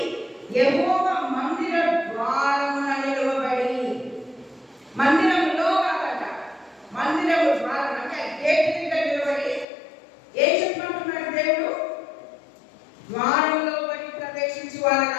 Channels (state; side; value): drops out; right; at 9.7 s